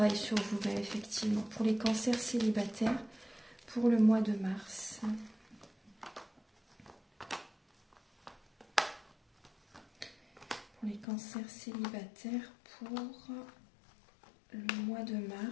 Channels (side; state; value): right; drops out; at 11.1 s